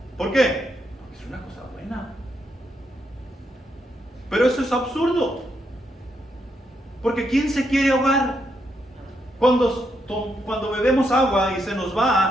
¿Por qué? Es una cosa buena. Pero eso es absurdo. Porque ¿quién se quiere ahogar? Cuando bebemos agua y se nos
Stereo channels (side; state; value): both; normal; correlation 0.79